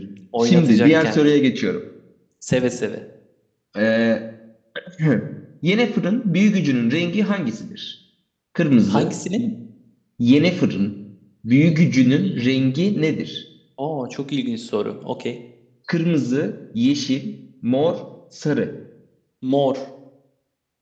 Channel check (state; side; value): identical; both; correlation 1.00